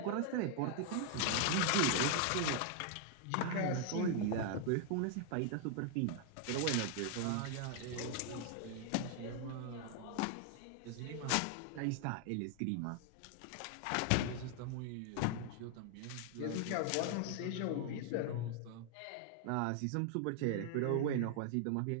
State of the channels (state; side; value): different; both; correlation 0.00